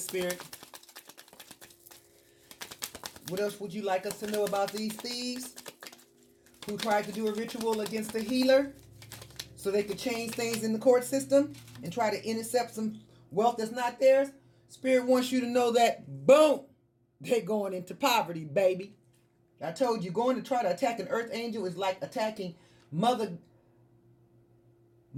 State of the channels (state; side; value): identical; both; correlation 1.00